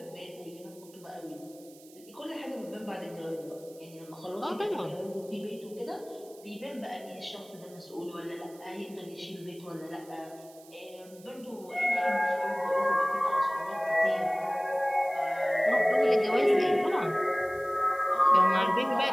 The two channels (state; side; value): noise; right; hiss, 24 dB below the sound